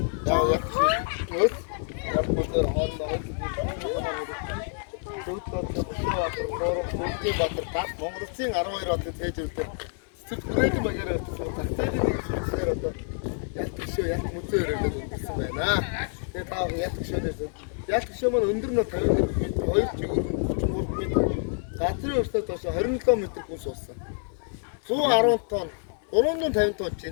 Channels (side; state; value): right; silent; 59 dB below the other